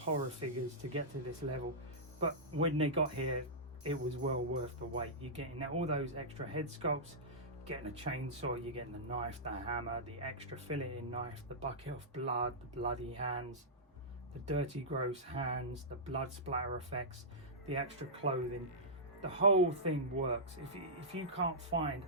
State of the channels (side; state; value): both; normal; correlation -0.14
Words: figures to get to this level, but when they got here, it was well worth the wait. You're getting all those extra head sculpts, getting a chainsaw, you're getting the knife, the hammer, the extra filleting knife, the bucket of blood, the bloody hands, the dirty gross hands, the blood splatter effects, the extra clothing. The whole thing works. If you can't find